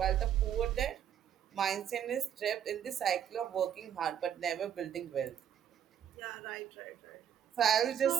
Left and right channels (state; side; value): quieter; left; 9.4 dB